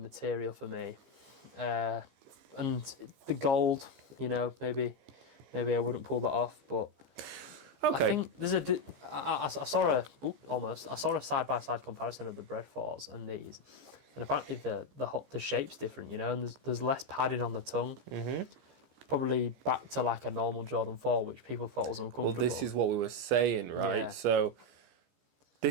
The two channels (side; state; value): left; late; 15 ms